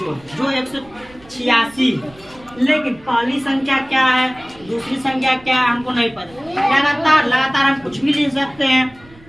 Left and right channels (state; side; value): noise; right; rumble, 25 dB below the sound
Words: जो 186 है। लेकिन पहली संख्या क्या है, दूसरी संख्या क्या है, हमको नहीं पता। लगातार हम कुछ भी ले सकते हैं,